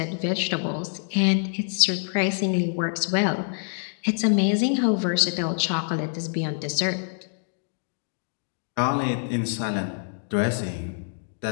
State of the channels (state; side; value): silent; right; digital silence